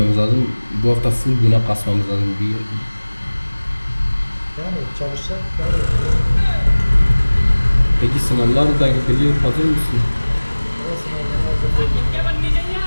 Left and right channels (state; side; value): inverted; both; correlation -1.00